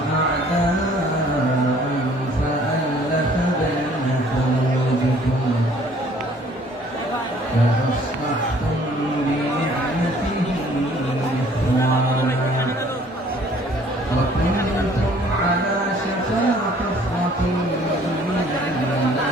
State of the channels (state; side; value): normal; both; correlation 0.57